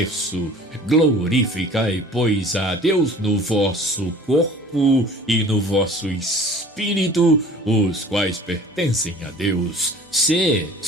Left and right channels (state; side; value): normal; both; correlation 0.47